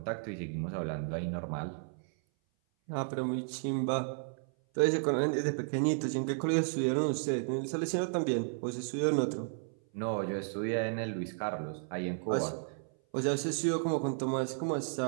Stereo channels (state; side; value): silent; left; 56 dB below the other